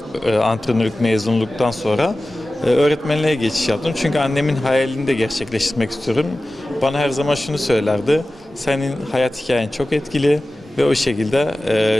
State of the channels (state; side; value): normal; both; correlation 0.96